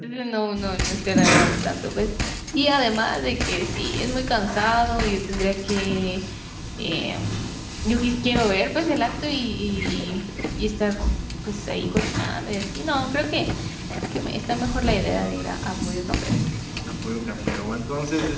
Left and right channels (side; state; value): both; identical; correlation 1.00